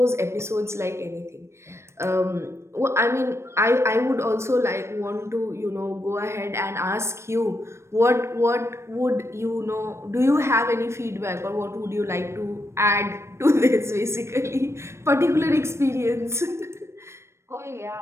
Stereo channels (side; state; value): left; late; 0.13 ms